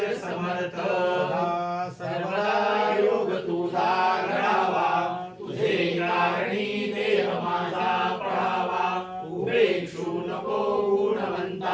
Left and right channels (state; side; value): identical; both; correlation 1.00